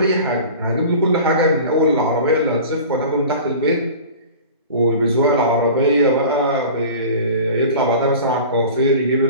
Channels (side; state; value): both; inverted; correlation -0.39